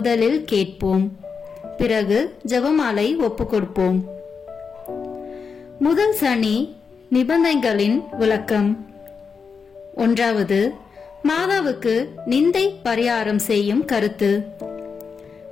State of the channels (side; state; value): right; quieter; 5.6 dB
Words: கேட்போம், பிறகு ஜெபமாலை ஒப்புக்கொடுப்போம். முதல் சனி நிபந்தனைகளின் விளக்கம். 1. மாதாவுக்கு நிந்தை பரிகாரம் செய்யும் கருத்து.